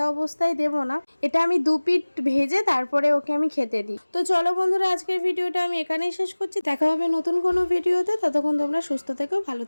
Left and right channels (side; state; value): both; inverted; correlation -1.00